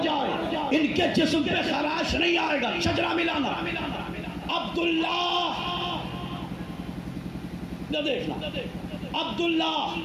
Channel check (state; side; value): identical; both; correlation 1.00